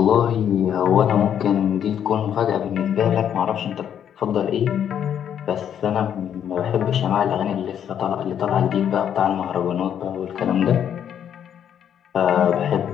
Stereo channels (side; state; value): right; quieter; 9.2 dB